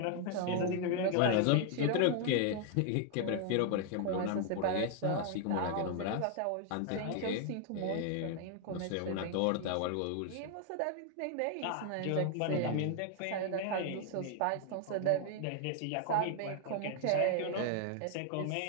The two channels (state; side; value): different; both; correlation 0.00